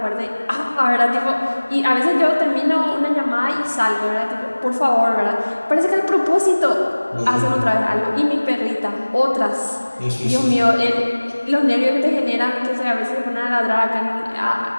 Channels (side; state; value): both; inverted; correlation -1.00